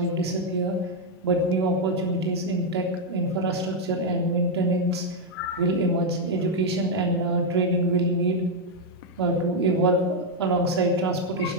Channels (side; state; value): both; normal; correlation 0.00